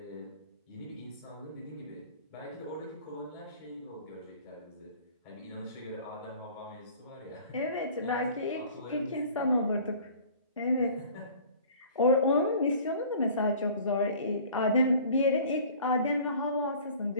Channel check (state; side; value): inverted; both; correlation -0.48